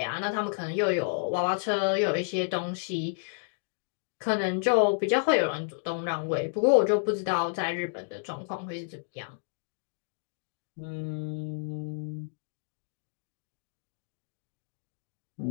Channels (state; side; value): silent; right; digital silence